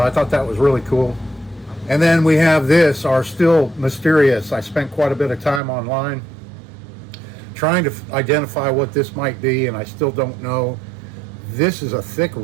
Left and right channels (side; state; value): left; drops out; at 5.6 s